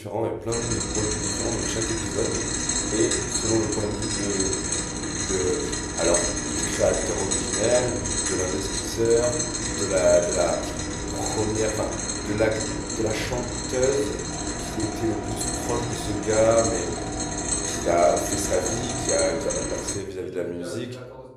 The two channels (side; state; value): both; identical; correlation 1.00